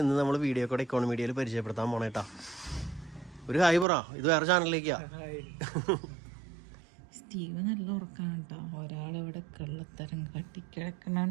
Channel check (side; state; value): left; drops out; at 3.9 s